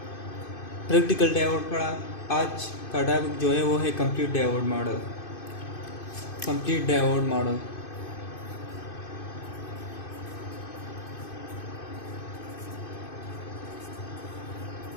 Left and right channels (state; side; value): late; right; 2.5 ms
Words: प्रैक्टिकल डायोड पढ़ा। आज का टॉपिक जो है वो है complete diode model. Complete diode model